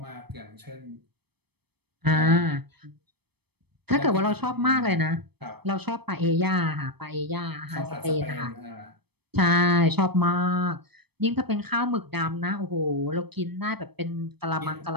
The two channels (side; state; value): left; late; 0.97 ms